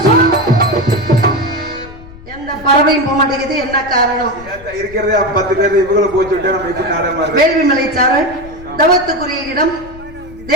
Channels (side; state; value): left; noise; rumble, 18 dB below the sound